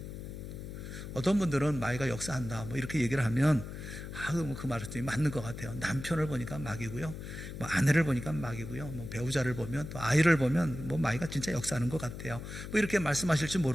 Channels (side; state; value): left; noise; hum, 9 dB below the sound